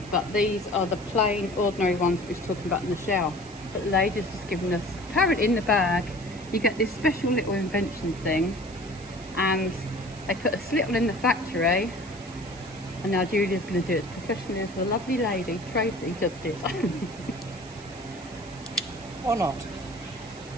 but these are the plain, ordinary ones we were talking about in the shower. But the lady's just given us, apparently in the bag, you get this special little invention thing, and they put a slittle in the factory, and now Julia's going to do it as professionally as the lovely lady, Tracy, just did. Or not.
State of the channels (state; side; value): noise; right; hiss, 21 dB below the sound